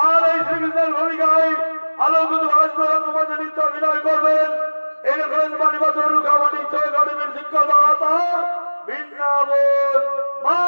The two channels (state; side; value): inverted; both; correlation -1.00